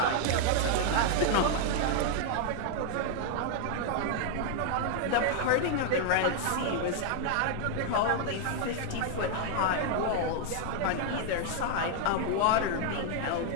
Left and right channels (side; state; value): both; different; correlation 0.00